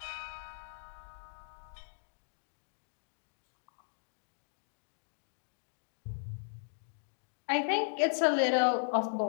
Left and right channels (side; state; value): right; silent; digital silence